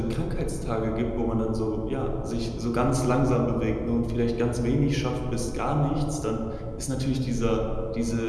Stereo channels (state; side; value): identical; both; correlation 1.00